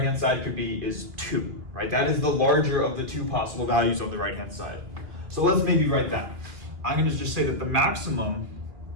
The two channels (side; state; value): left; late; 2.5 ms